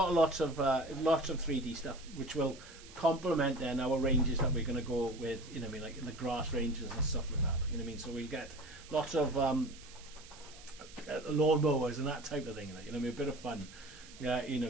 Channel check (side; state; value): right; noise; hiss, 19 dB below the sound